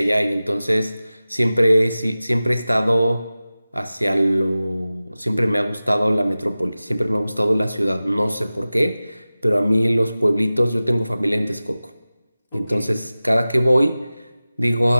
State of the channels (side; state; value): both; inverted; correlation -0.96